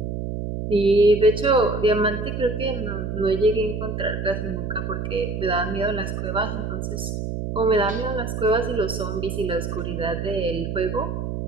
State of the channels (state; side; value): noise; right; hum, 4 dB below the sound